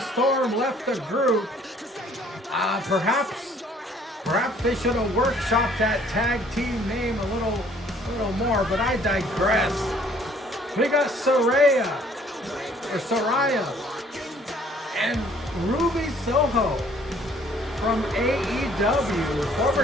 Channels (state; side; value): normal; both; correlation 0.59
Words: left the group, perhaps they should have workshopped that tag team name a little more, but I digress. We got Saraya and Ruby Soho from AEW,